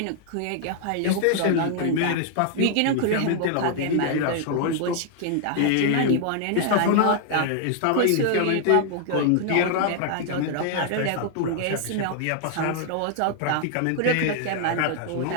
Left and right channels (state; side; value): different; both; correlation 0.00